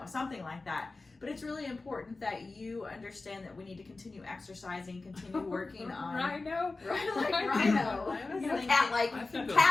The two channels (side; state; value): right; quieter; 3.5 dB